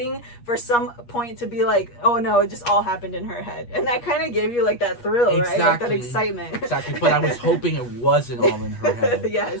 for some point to be like, oh no, it just all happened in her head, and that kind of gave you like that thrill, right? Like that excitement. Exactly, but I was hoping it wasn't all in her head. Yes.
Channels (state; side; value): late; right; 8.4 ms